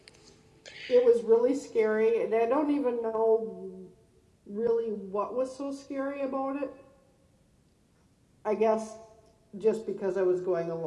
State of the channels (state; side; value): identical; both; correlation 1.00